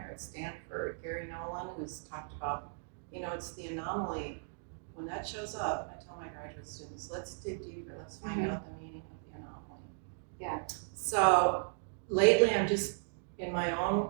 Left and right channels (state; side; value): silent; left; digital silence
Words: at Stanford, Gary Nolan, who's talked about, it's the anomaly. When that shows up, I tell my graduate students, let's dig deeper, let's find out the meaning of the anomaly. Yeah. So lately I'm just, in my own